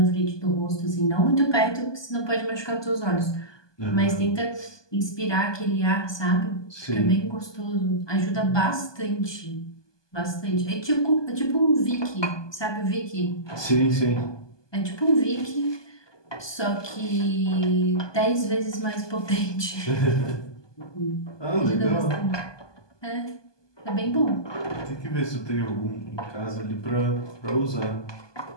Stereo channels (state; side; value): late; right; 1.2 ms